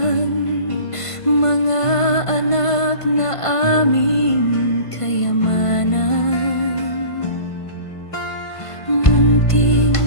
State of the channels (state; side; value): late; right; 1.5 ms